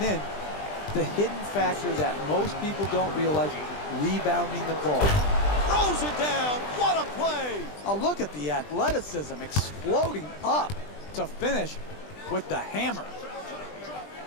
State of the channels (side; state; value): right; late; 20 ms